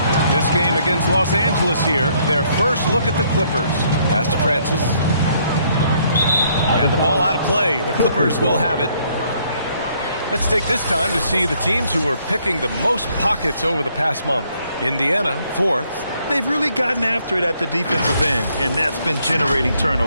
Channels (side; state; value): both; inverted; correlation -0.68